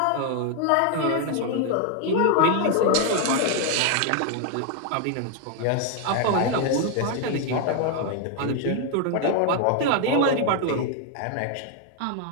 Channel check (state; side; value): different; both; correlation 0.01